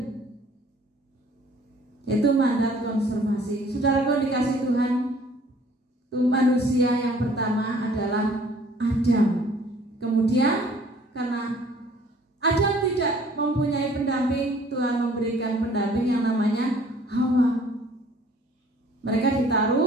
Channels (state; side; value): normal; both; correlation 0.55